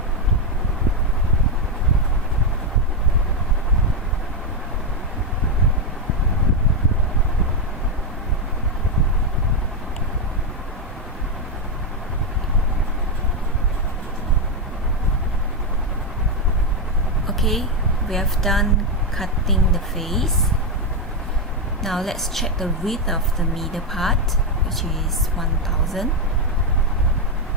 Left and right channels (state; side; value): normal; both; correlation 0.06